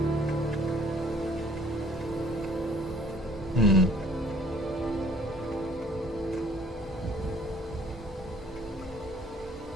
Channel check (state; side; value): normal; both; correlation 0.56